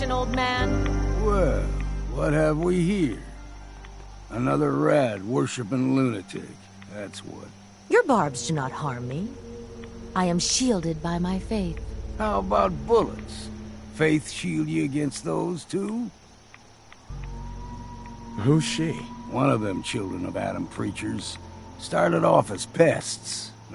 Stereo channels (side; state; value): both; identical; correlation 1.00